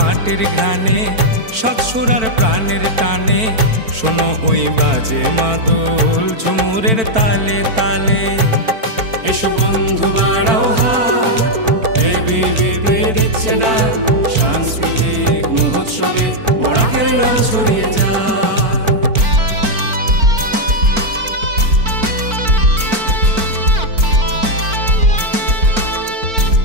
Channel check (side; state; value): left; late; 4.5 ms